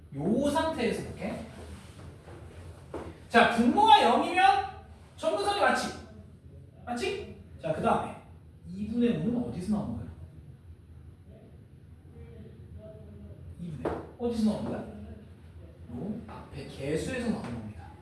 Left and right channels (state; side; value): identical; both; correlation 1.00